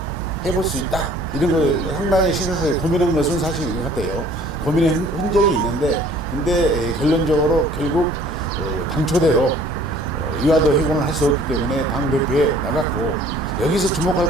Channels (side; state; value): both; normal; correlation 0.53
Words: 해볼 수 있다 이런 걸 상당히 신경을 고민한 것은 사실인 것 같아요. 고민의 흔적이 있는데 근데 결론적으로 결국 당초대로 이와도 회고를 할 수 없기 때문에 당대표에 나갔고 여기서